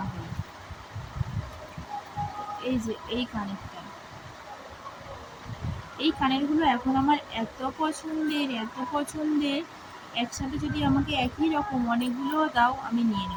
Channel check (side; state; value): both; identical; correlation 1.00